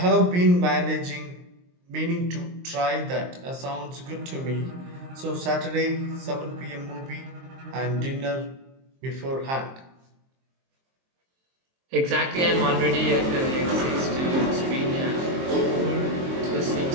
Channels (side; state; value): left; late; 23 ms